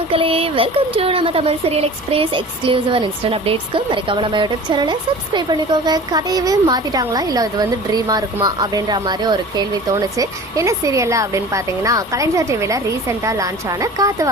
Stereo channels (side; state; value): both; normal; correlation 0.40